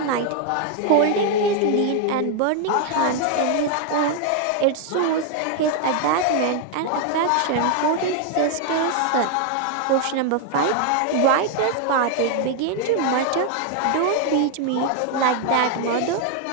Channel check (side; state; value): both; different; correlation 0.00